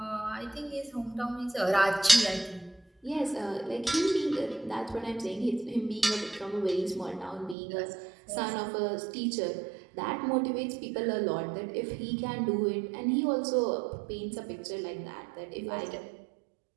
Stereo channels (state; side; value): drops out; left; at 7.6 s